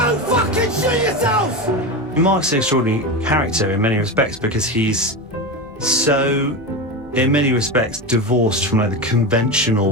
fucking shoot yourselves! Mark's an extraordinary character in many respects because he's so, in many respects, divorced from like the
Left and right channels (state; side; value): normal; both; correlation 0.20